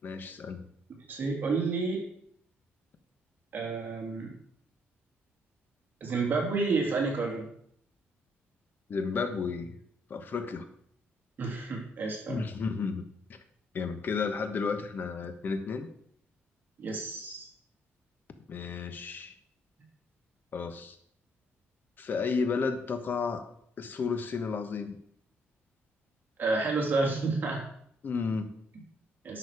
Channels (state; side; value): normal; both; correlation 0.68